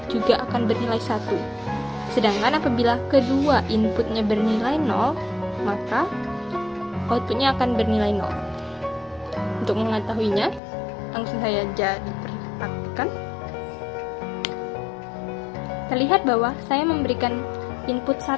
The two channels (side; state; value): right; drops out; at 10.6 s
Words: juga akan bernilai 1. Sedangkan apabila kedua inputnya bernilai 0, maka outputnya akan bernilai 0. Untuk mengetahuinya, langsung saya diperhatikan. Terlihat bahwa saya memberikan input